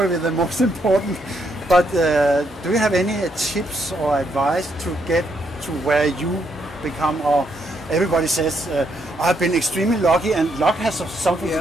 the most important. But do you have any tips or advice to get to where you become, or everybody says, I've been extremely lucky, and luck has something to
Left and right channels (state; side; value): normal; both; correlation 0.75